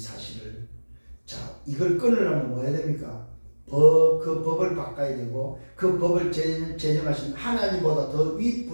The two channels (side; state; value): both; inverted; correlation -1.00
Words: 이걸 끊으려면 뭐 해야 됩니까? 그 법을 바꿔야 되고 그 법을 제정하신 하나님보다 더